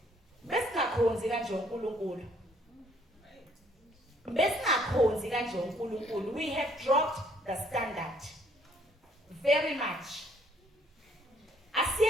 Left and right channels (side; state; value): both; normal; correlation 0.64